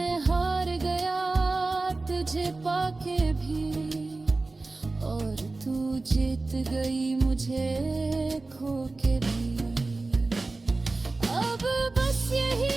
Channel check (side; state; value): left; quieter; 3.4 dB